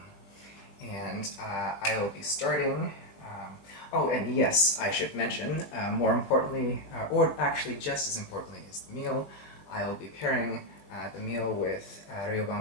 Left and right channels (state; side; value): late; right; 20 ms